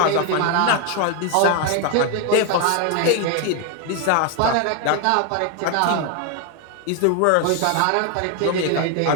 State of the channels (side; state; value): both; different; correlation 0.01